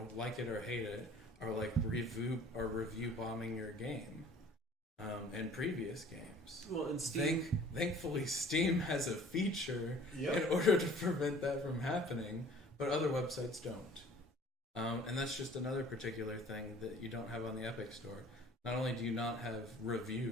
like it or hate it, are like review bombing your game. And previous games. Well, and Steam... Thankfully, Steam has a feature Yep. in order to prevent that from happening, but other websites don't. And that's just another particular thing that you don't have on the Epic Store. Not only do you not have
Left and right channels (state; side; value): normal; both; correlation 0.51